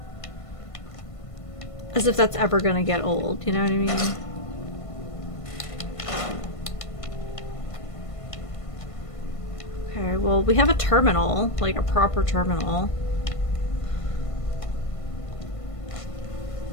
As if that's ever gonna get old, you know what I mean? Okay, well, we have a terminal, like a proper terminal.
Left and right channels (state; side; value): late; right; 1.5 ms